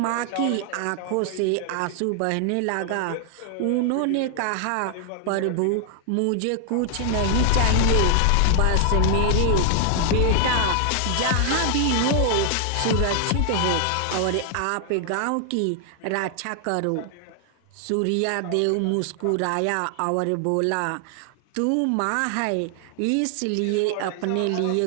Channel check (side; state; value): both; different; correlation 0.00